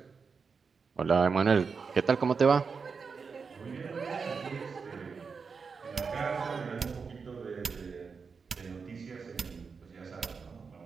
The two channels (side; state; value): left; quieter; 5.3 dB